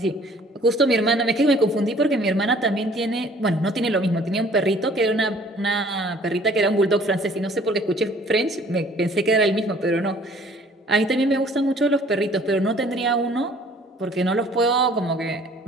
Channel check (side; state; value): both; normal; correlation 0.55